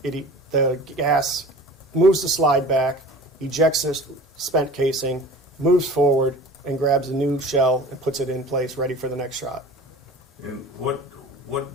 the gas moves the slide back, ejects the spent casing, moves forward, and grabs a new shell and puts it in place, ready for the next shot. And what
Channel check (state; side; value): normal; both; correlation 0.41